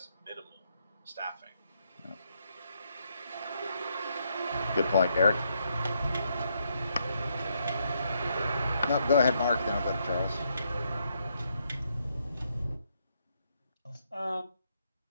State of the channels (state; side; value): inverted; both; correlation -0.76